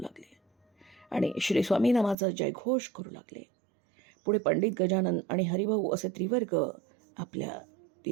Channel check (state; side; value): drops out; left; at 2.1 s